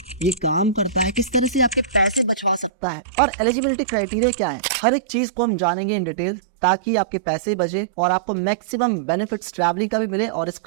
ये काम करता है, किस तरह से आपके पैसे बचवा सकता है और एलिजिबिलिटी क्राइटेरिया क्या है, हर एक चीज को हम जानेंगे इन डिटेल, ताकि आपके पैसे बचे और आपको मैक्सिमम बेनिफिट्स ट्रैवलिंग का भी मिले और इस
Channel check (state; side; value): drops out; left; at 2.7 s